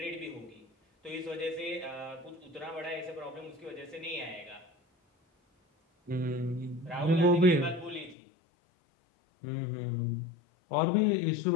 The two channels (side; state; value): right; drops out; at 8.2 s